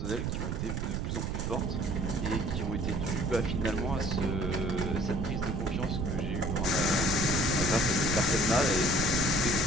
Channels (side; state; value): right; noise; rumble, 1 dB below the sound